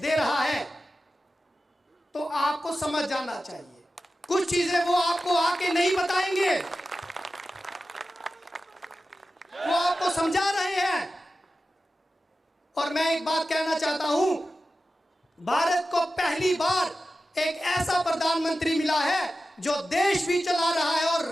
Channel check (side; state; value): both; normal; correlation 0.93